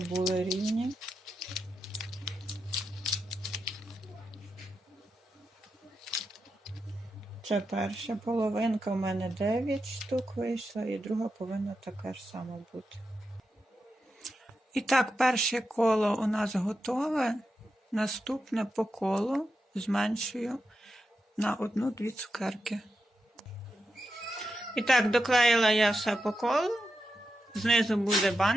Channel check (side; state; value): both; normal; correlation 0.88